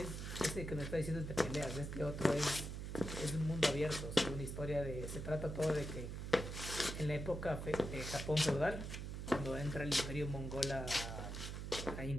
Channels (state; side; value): noise; right; hum, 5 dB below the sound